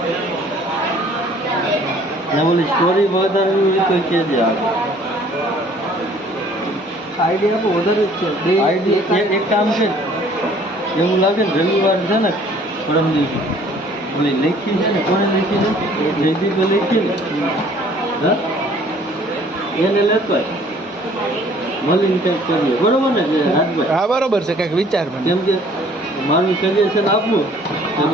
બોલી સ્ટોરી વધારવી હોય તો કહેજે. આઈડિયા આપો વધારે જ છે. આઈડિયા એક કામ છે, એવું લાગે ને રવિવાર છે ને પરમ દિવસે ઓલી લખી છે ને, કોને લખી છે? જયદીપે લખી ને, હા એને લેતો મળીને કંઈક કરીએ. બરોબર ને રાજભાઈ? હા બરોબર છે, કંઈક વિચાર મને. કેમ કે મારું સજેશન આપવું તો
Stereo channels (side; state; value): both; normal; correlation 0.56